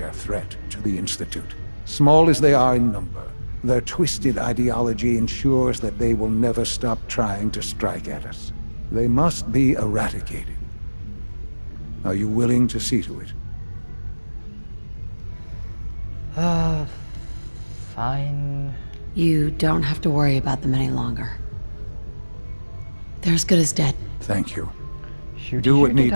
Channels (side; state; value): both; inverted; correlation -1.00